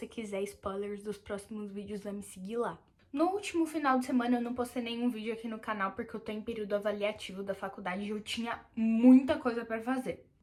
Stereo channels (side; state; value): both; identical; correlation 1.00